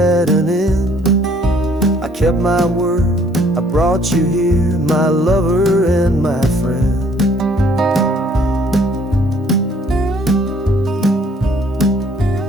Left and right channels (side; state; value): both; normal; correlation 0.61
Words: an end. I kept my word, I brought you here, my lover and my friend.